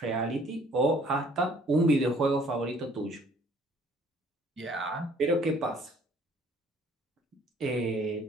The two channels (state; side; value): normal; both; correlation 0.58